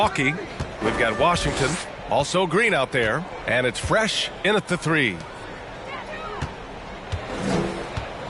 we've got Washington, also Green out there, and it's Fresh in at the 3.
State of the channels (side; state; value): both; identical; correlation 1.00